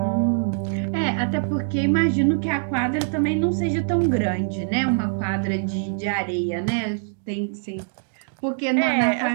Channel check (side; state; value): left; silent; digital silence